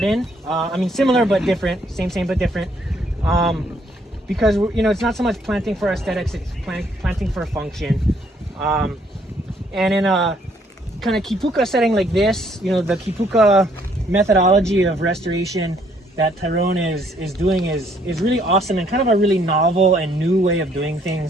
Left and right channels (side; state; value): both; normal; correlation 0.67